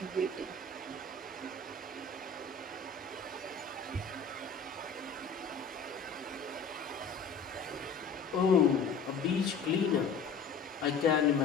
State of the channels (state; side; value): quieter; right; 4.8 dB